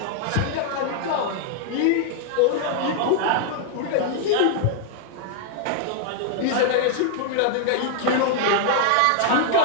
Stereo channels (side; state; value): both; different; correlation 0.00